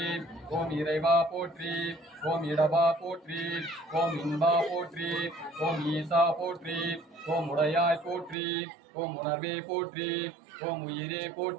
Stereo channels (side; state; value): left; drops out; at 8.3 s